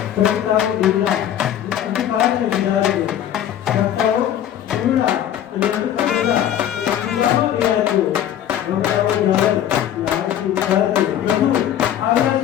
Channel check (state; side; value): quieter; right; 10.8 dB